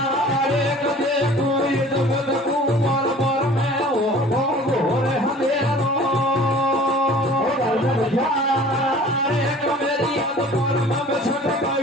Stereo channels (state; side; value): normal; both; correlation 0.47